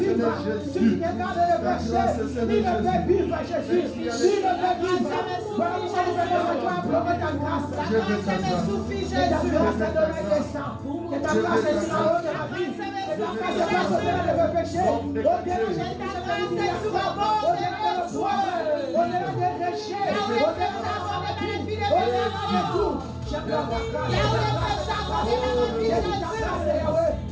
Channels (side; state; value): both; identical; correlation 1.00